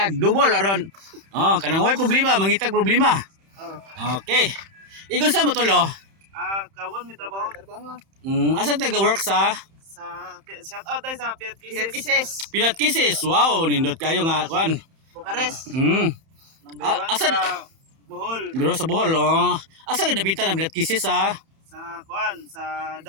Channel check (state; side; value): late; left; 31 ms